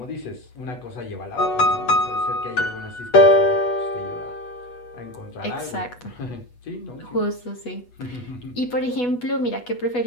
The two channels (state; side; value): late; right; 8.2 ms